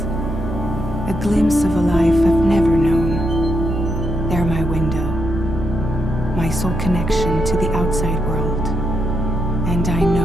a glimpse of a life I've never known. They're my window, my sole connection to the outside world, and I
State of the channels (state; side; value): normal; both; correlation 0.82